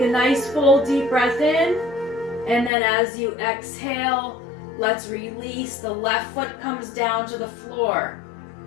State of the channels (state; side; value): drops out; right; at 2.7 s